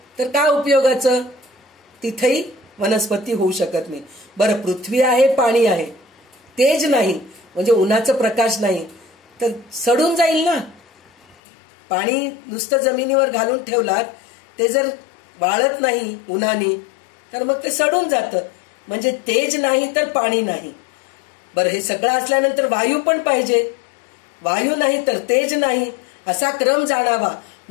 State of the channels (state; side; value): drops out; right; at 11.4 s